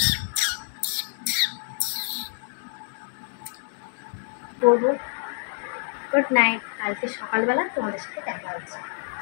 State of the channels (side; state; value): right; silent; digital silence